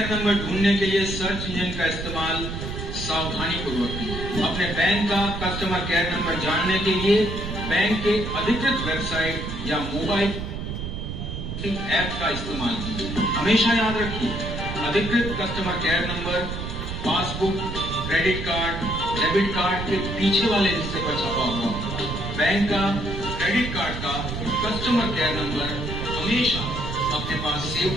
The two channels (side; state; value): right; noise; rumble, 5 dB below the sound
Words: number ढूंढने के लिए सर्च इंजन का इस्तेमाल सावधानी पूर्वक। अपने बैंक का कस्टमर केयर नंबर जानने के लिए बैंक के अधिकृत वेबसाइट या मोबाइल ऐप का इस्तेमाल कीजिए। हमेशा याद रखिए, अधिकृत customer care number passbook, credit card, debit card के पीछे वाले हिस्से पर छपा हुआ। बैंक का, क्रेडिट कार्ड का कस्टमर केयर नंबर हमेशा अपने पास सेव